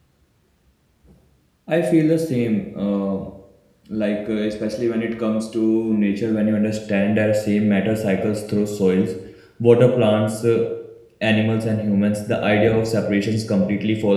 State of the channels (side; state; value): both; identical; correlation 1.00